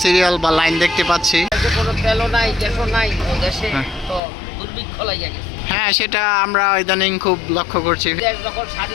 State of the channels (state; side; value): drops out; right; at 4.2 s